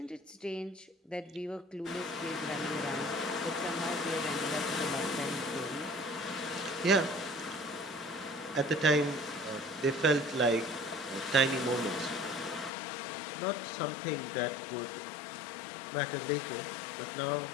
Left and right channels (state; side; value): drops out; right; at 12.7 s